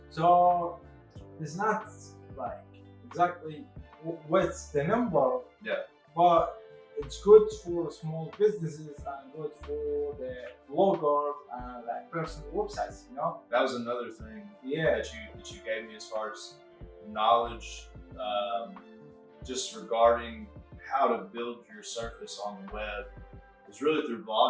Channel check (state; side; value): identical; both; correlation 1.00